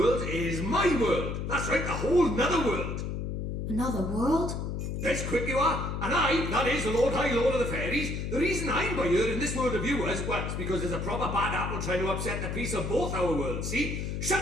is my world. That's right, a whole nother world. Another world? That's quick you are. And I, that is the Lord of the Fairies, the reason I'm by here in this world of yours, well, it's because there's a proper bad apple trying to upset the peace of both our worlds, see?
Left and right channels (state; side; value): noise; left; hum, 3 dB below the sound